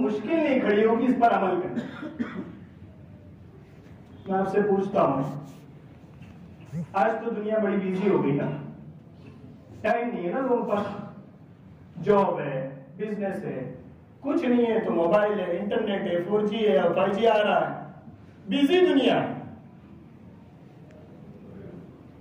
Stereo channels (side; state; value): both; identical; correlation 1.00